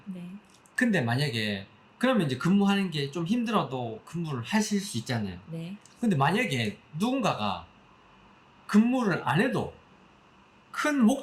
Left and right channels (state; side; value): identical; both; correlation 1.00